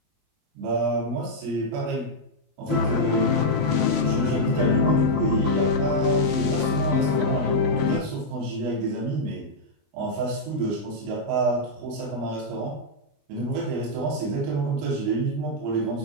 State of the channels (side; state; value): left; late; 20 ms